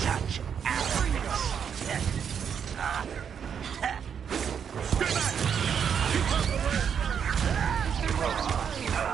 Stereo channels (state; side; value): quieter; left; 7.6 dB